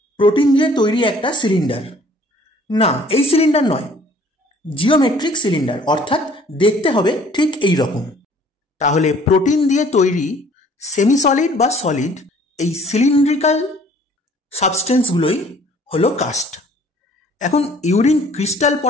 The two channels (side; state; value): both; normal; correlation 0.55